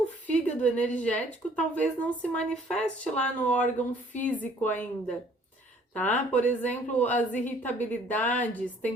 fígado energético talvez não se manifeste lá no órgão físico ainda, tá? Por exemplo, as irritabilidades,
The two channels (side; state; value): both; normal; correlation 0.58